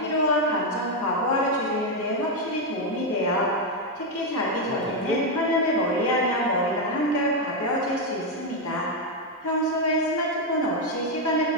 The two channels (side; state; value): both; normal; correlation 0.03